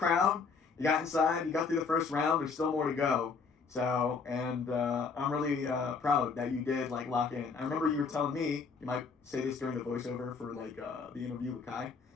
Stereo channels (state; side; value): quieter; right; 5.1 dB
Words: You got inside. You got through the first round. There's still more to go. So, and I'm really proud that you did, like, lock in. I remember you were telling me, you might say this during the voiceover for, like, the interview with Kai,